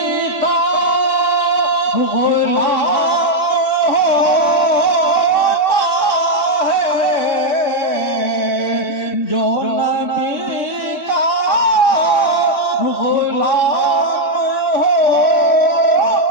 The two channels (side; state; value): right; late; 3.6 ms